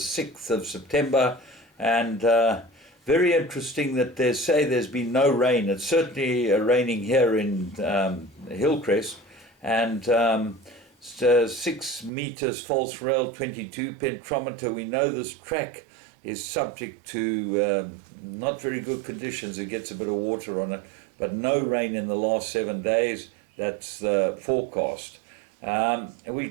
of September. And very interesting that they say there's been no rain. It's certainly raining here in Hillcrest. And 6 meters false rail, 22 pentometer. We know this track is subject to not very good conditions. It gets a bit of water on it, but no rain in the last 7 days. That's the forecast. We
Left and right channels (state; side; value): drops out; left; at 12.1 s